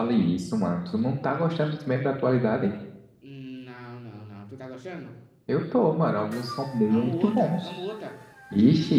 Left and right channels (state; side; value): identical; both; correlation 1.00